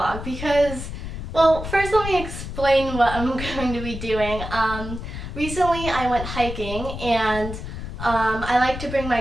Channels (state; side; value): noise; left; rumble, 8 dB below the sound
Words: because, well, first let me explain what I'm going to be doing. Recently I went hiking, and I like to bring my